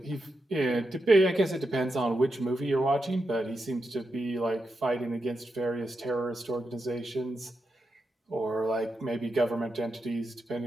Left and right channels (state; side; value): normal; both; correlation 0.87